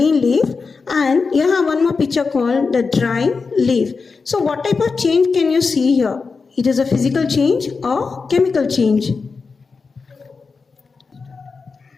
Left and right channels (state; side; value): quieter; right; 4.7 dB